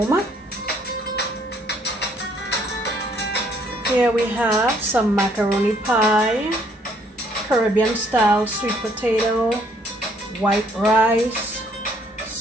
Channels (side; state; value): both; normal; correlation 0.65